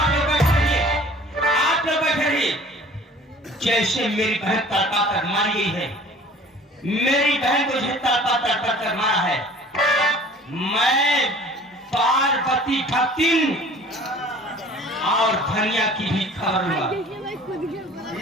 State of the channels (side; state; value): both; normal; correlation 0.48